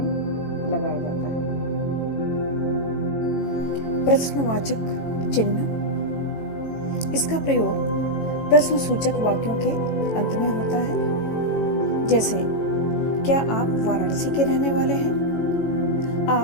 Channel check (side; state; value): right; late; 18 ms